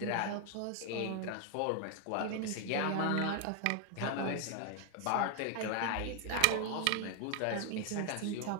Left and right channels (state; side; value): different; both; correlation 0.00